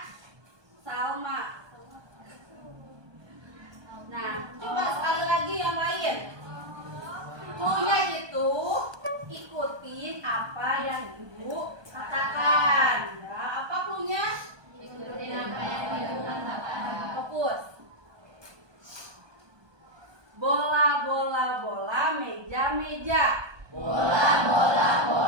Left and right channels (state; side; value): late; left; 1.2 ms